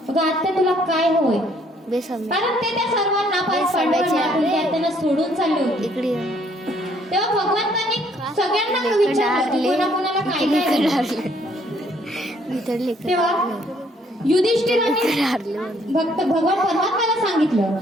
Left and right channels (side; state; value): both; normal; correlation 0.65